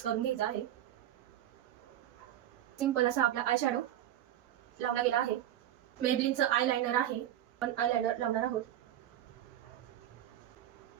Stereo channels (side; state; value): left; quieter; 12.0 dB